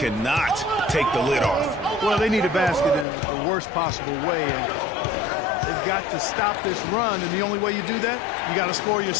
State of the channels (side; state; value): right; drops out; at 3.1 s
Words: take the lid off. Well, they need a basket in the worst possible way, and they've got to stop this run, and the only way you do that, you got to score